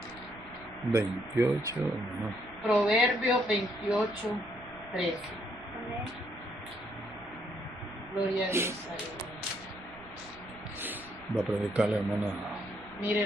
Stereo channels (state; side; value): noise; right; rumble, 21 dB below the sound